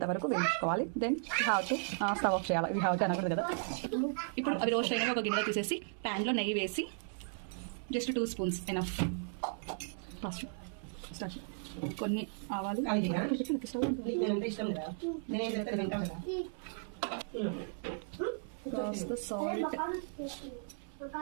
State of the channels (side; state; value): left; silent; 54 dB below the other